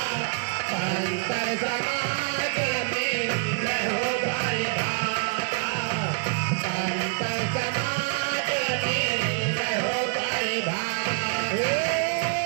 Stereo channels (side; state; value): left; quieter; 33.5 dB